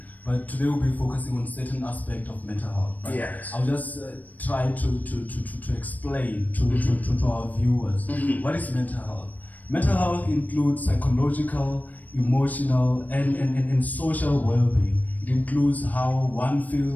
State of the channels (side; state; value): right; late; 0.079 ms